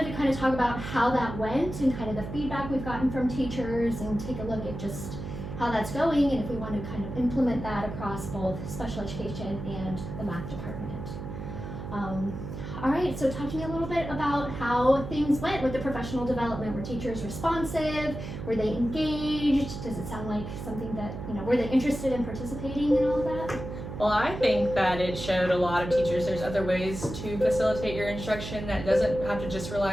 to kind of talk about how that went and kind of the feedback we've gotten from teachers and take a look at just how that's going and if we want to kind of implement that across both special education and the math department. All right, so talk to me a little bit about how things went with the professional development. Were teachers responsive? Were they engaged? Does it sound like something that, were they interested in participating in all of that? Well, I think that it showed a lot of teachers there's other ways to facilitate your instruction that doesn't have to just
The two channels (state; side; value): noise; right; hum, 8 dB below the sound